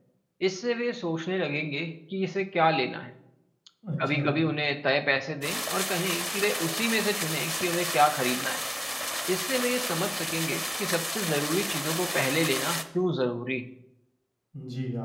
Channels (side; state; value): both; identical; correlation 1.00